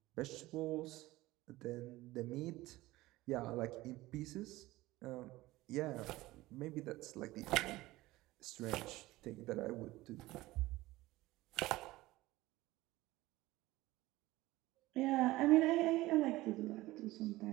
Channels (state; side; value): quieter; left; 18.3 dB